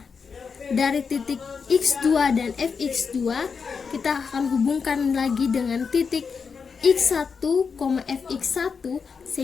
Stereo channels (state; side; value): quieter; right; 5.7 dB